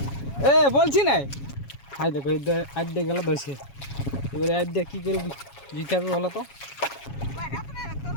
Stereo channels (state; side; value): late; right; 7.2 ms